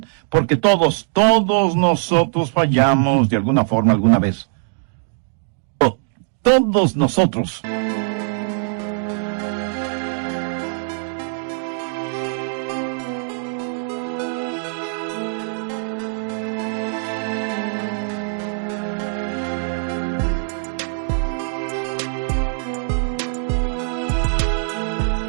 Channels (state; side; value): silent; left; digital silence